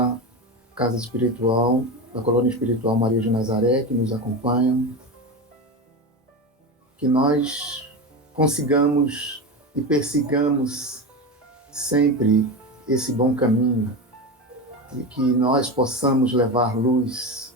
Casa Espiritual, da Colônia Espiritual Maria de Nazaré, que nos acompanham, que nós consigamos e persigamos sempre esse bom caminho e que nós possamos levar luz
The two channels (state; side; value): normal; both; correlation 0.21